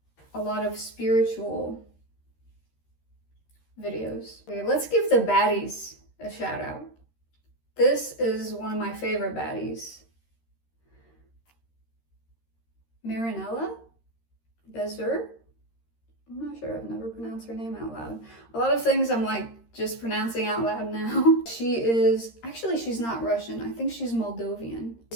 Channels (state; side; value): late; right; 13 ms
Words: a lot of spiritual videos. Okay, let's give the baddies a shout out. This is one of my favorite baddies. Marinella Bezer. I'm not sure, I've never pronounced her name out loud. A lot of things I'm like just pronouncing out loud now. She is, actually she's not Russian, I think she's Moldovan.